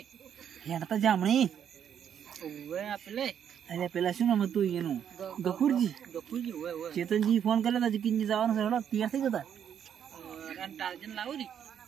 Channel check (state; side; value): quieter; left; 8.8 dB